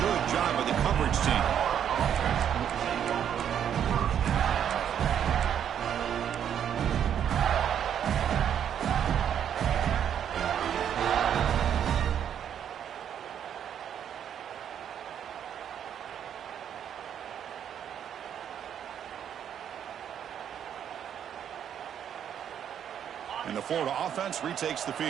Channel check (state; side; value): quieter; left; 9.1 dB